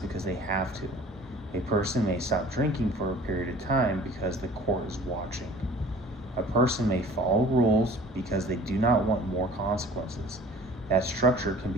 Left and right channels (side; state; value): both; normal; correlation 0.47